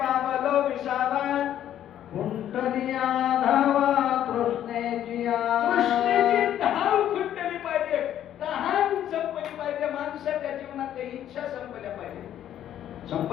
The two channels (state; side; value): quieter; right; 11.1 dB